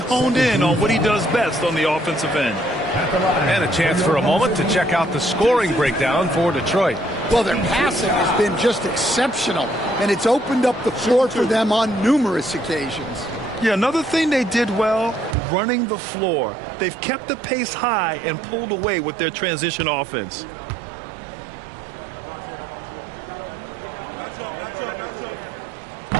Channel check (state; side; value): drops out; left; at 15.4 s